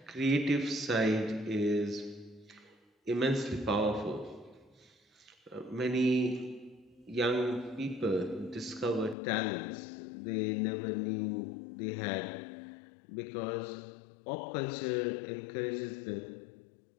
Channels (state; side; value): drops out; right; at 9.2 s